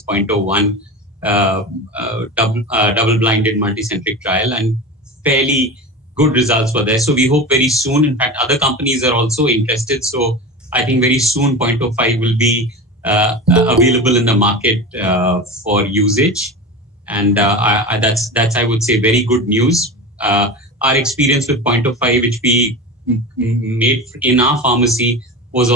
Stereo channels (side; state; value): both; normal; correlation 0.27